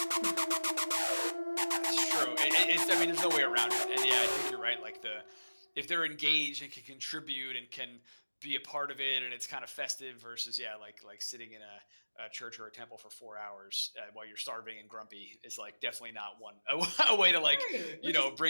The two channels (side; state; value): both; inverted; correlation -1.00